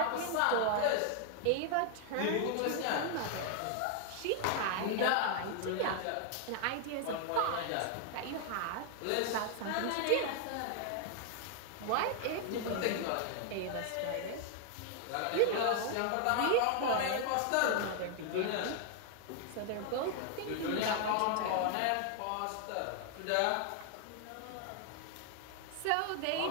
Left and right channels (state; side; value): different; both; correlation 0.00